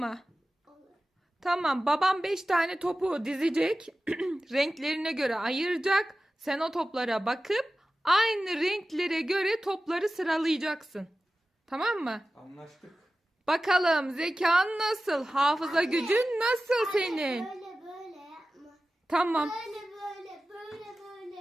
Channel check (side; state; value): both; normal; correlation 0.95